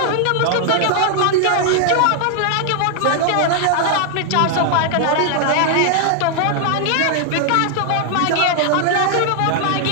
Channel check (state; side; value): different; both; correlation 0.00